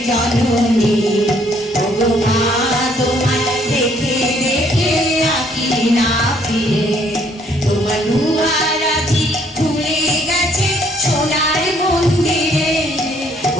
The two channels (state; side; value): normal; both; correlation 0.65